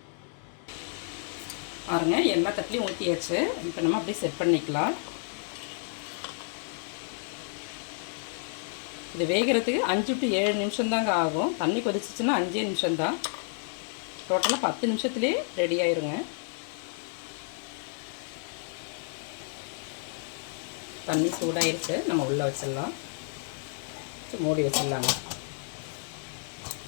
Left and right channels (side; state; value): right; silent; 58 dB below the other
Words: பாருங்க, எல்லா தட்டிலையும் ஊற்றியாச்சு. இப்போ நம்ம அப்படியே செட் பண்ணிக்கலாம். இது வேகிறதுக்கு 5 to 7 நிமிஷம் தாங்க ஆகும். தண்ணி கொதிச்சிச்சுன்னா 5 நிமிஷம்தான். டோட்டலாக 10 நிமிஷத்துலேயே ரெடி ஆயிருங்க. தண்ணி சூடாயிருச்சு, நம்ம உள்ளே வச்சிடலாம். மூடி வச்சிடலாங்க.